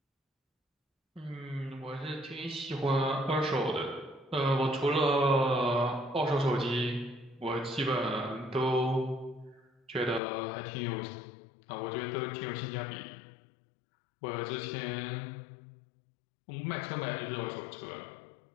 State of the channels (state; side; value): drops out; right; at 10.2 s